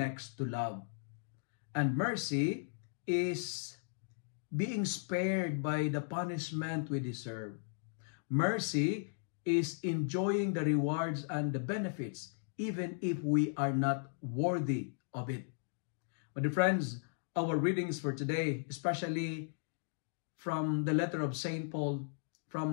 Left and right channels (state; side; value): silent; right; digital silence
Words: to love. And mercy is being spared by the punishment we deserve. Mercy is enjoying the rewards and the benefits even if we are not worthy of it. My dear friends, our readings for today, especially from the letter of St. Paul,